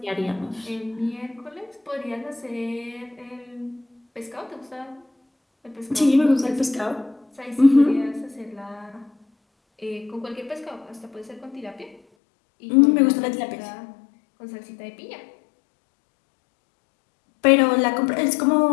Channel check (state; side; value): drops out; right; at 12.0 s